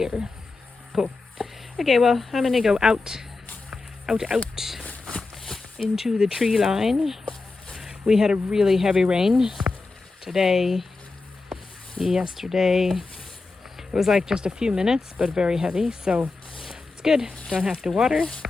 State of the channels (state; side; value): quieter; right; 3.7 dB